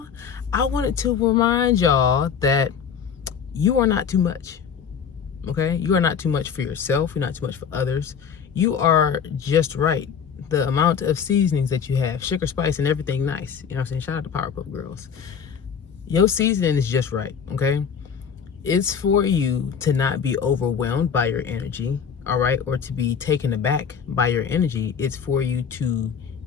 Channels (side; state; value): right; quieter; 7.1 dB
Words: I wanted to remind y'all that you are not too much. Okay, you are not too much for yourself. You're not too much for others. You are just right. The amount of seasonings that you have, sugar, spice, and everything nice. You know what I'm saying? Shout out to Powerpuff Girls. Your seasoning is just right. Okay, it's for you to not be overwhelmed by your energy. All right, or to be taken aback by your energy. It's for you to